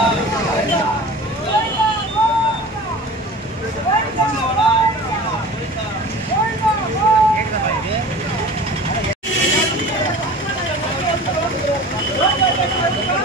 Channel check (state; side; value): normal; both; correlation 0.39